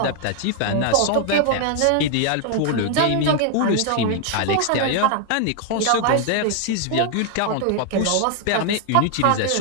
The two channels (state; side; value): different; both; correlation 0.00